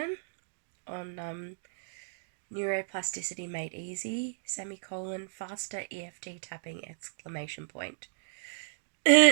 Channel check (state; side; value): silent; left; digital silence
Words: on Neuroplasticity Made Easy, faster EFT tapping,